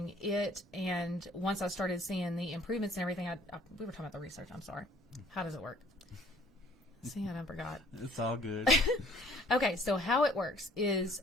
it, and once I started seeing the improvements and everything, we were talking about the research. I'm sorry. How does it work? See, I forgot. It's all good. Okay, so how it works is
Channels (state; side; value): normal; both; correlation 0.56